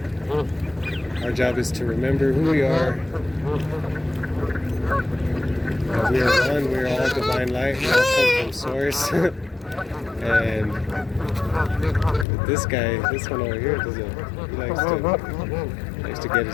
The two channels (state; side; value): drops out; right; at 12.2 s